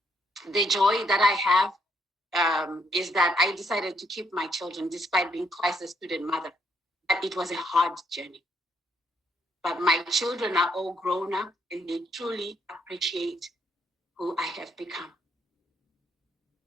The joy that I have is that I decided to keep my children despite being twice a student mother. But it was a hard journey. But my children are all grown up and they truly appreciate who I have become.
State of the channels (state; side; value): normal; both; correlation 0.73